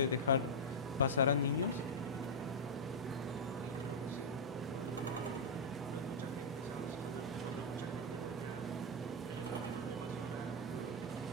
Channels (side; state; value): both; normal; correlation -0.06